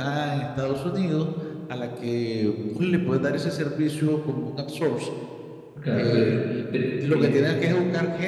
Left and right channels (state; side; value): identical; both; correlation 1.00